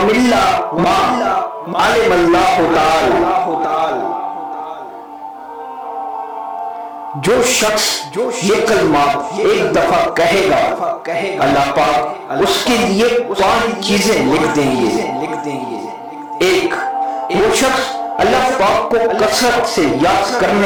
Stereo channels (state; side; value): identical; both; correlation 1.00